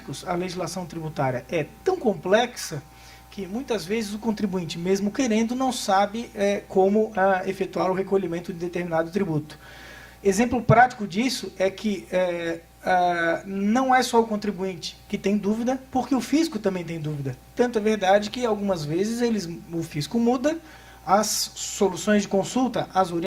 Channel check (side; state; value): both; identical; correlation 1.00